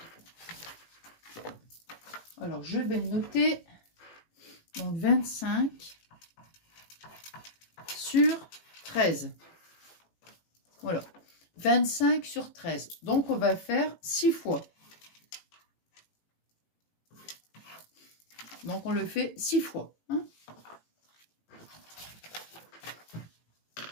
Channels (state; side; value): late; right; 18 ms